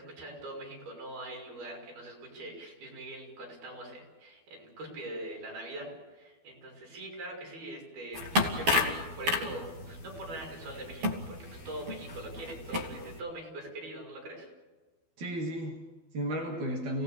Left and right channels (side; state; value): left; late; 12 ms